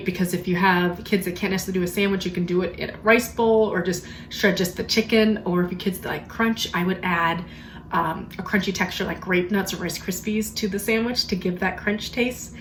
because if you have kids that can't necessarily do a sandwich, you can do it in a rice bowl or just shred just the chicken. Or if your kids like crunch, I would add a crunchy texture like grape nuts or Rice Krispies to the sandwich to give that crunch taste.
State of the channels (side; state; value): both; identical; correlation 1.00